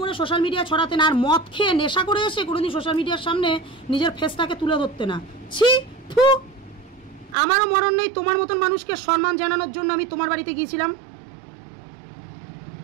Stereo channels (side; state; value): left; drops out; at 7.4 s